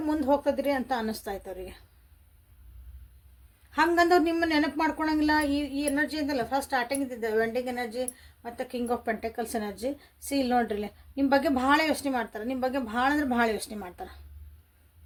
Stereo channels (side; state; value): both; identical; correlation 1.00